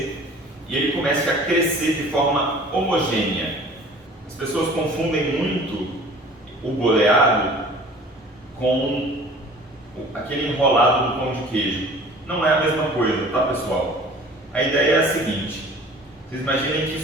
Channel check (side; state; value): both; normal; correlation 0.46